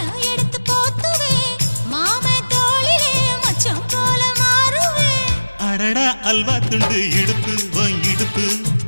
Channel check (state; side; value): inverted; both; correlation -1.00